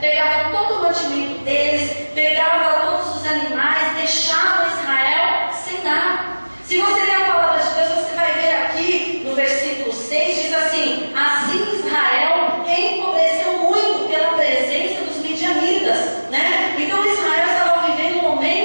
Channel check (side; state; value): both; inverted; correlation -1.00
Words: todo o mantimento deles, pegavam todos os animais, deixavam Israel sem nada. Se você ler a palavra de Deus, você vai ver aqui no versículo 6, diz assim: assim Israel empobreceu muito pela presença dos midianitas, né? Então Israel estava vivendo um